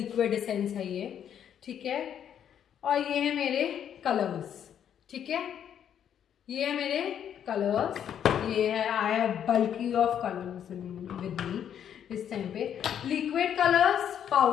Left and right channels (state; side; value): quieter; right; 9.2 dB